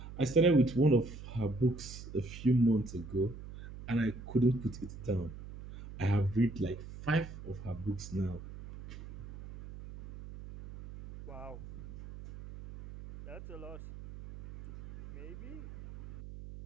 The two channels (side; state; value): right; noise; hum, 13 dB below the sound